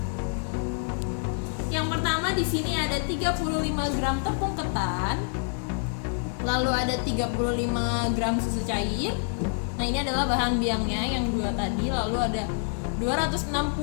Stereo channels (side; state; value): right; silent; 60 dB below the other